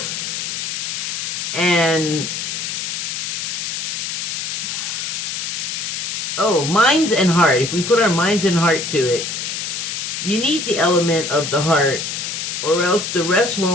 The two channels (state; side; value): noise; left; hiss, 3 dB below the sound